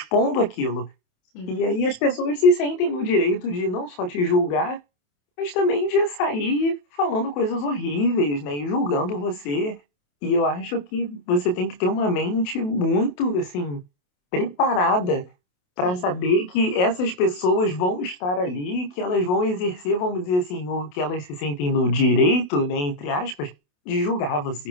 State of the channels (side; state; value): right; late; 28 ms